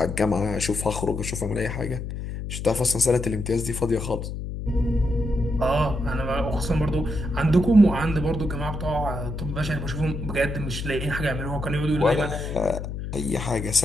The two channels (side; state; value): left; noise; hum, 6 dB below the sound